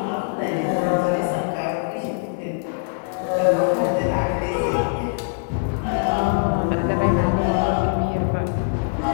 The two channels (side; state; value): right; silent; 64 dB below the other